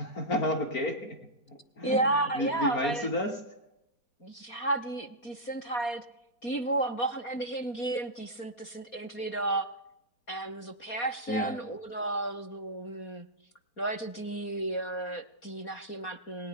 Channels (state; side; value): late; right; 4.2 ms